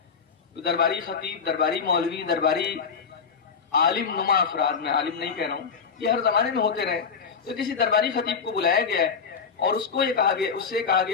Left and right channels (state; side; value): quieter; right; 5.9 dB